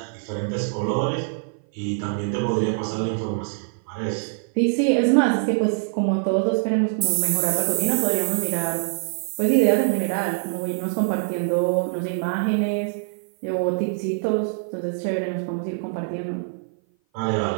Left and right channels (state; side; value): silent; left; 56 dB below the other